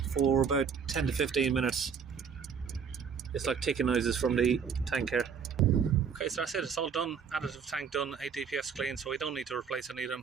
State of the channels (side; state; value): left; quieter; 6.6 dB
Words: for about 10 to 15 minutes. It's like ticking noises from the tank here. Okay, so that's it, it's all done. Additive tank done, 8 DPFs clean, so we don't need to replace any of